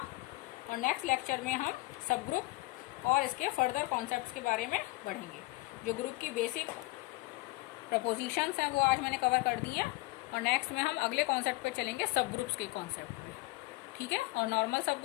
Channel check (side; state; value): right; quieter; 21.6 dB